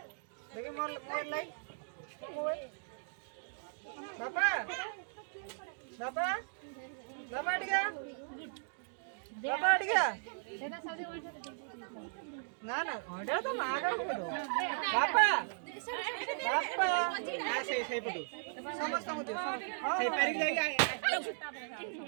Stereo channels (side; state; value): left; silent; digital silence